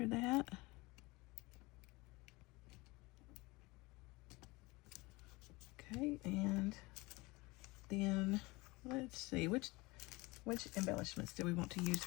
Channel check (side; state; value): right; quieter; 23.2 dB